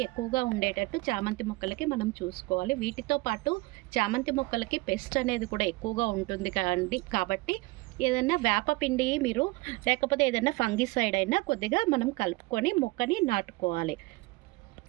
ఎక్కువగా ఉండేటట్టు చామంతి మొక్కలకి మనం చూసుకోవాలి. వీటితో పాటు చామంతి మొక్కలకి పెస్ట్ అనేది కూడా ఎక్కువగా ఉంటుంది కాబట్టి ఏదైనా వేపపిండి మీరు లేకపోతే ఏదైనా ఫంగిసైడ్ అయినా కొద్దిగా మనం కలుపుకొని మొక్కని నాటుకోవాలి.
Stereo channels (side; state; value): left; quieter; 22.8 dB